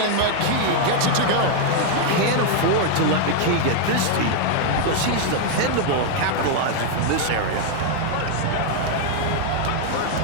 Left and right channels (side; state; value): both; different; correlation 0.00